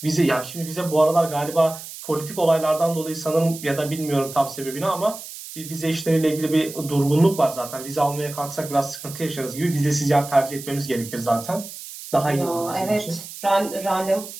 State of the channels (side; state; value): right; noise; hiss, 12 dB below the sound